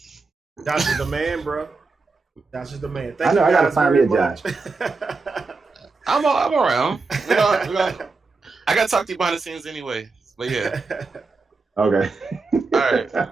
Josh is the man, bro. Josh is the man. Thank you guys, I gotta find me a Josh. I'm around. I gotta talk to you behind the scenes anyway. But yeah. Okay.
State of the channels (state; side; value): quieter; left; 4.0 dB